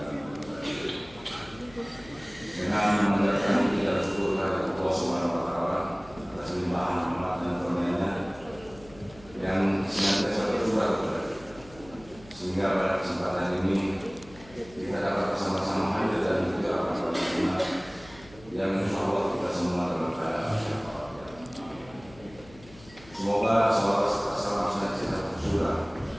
dengan mengucapkan puji dan syukur kepada Allah Subhanahu wa Ta'ala atas limpahan rahmat dan karunia-Nya yang senantiasa tercurah kepada kita, sehingga pada kesempatan ini kita dapat bersama-sama hadir dan juga akan bersama yang insya Allah kita semua dalam keadaan sehat. Semoga salam senantiasa tercurah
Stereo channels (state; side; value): noise; left; hum, 22 dB below the sound